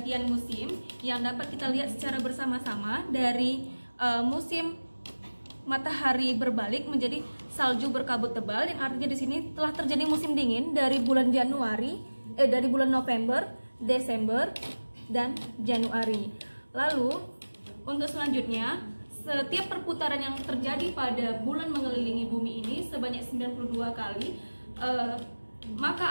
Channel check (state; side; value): inverted; both; correlation -1.00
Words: musim yang dapat kita lihat secara bersama-sama dari musim matahari berbalik menjadi salju berkabut tebal, yang artinya di sini telah terjadi musim dingin dari bulan dari bulan November, Desember, dan Januari. Lalu untuk selanjutnya, setiap perputaran yang terjadi pada bulan mengelilingi bumi ini sebanyak 92 kali,